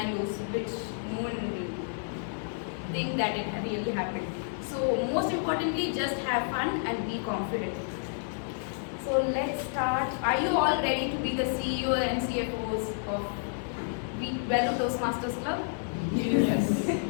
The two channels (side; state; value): right; silent; digital silence